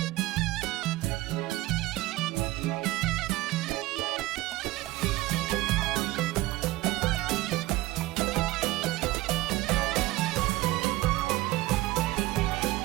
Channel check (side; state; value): left; quieter; 18.2 dB